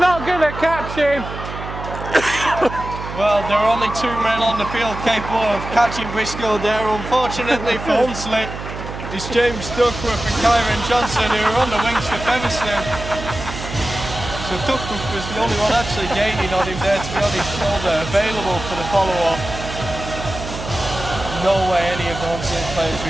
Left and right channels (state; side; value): noise; right; hum, 9 dB below the sound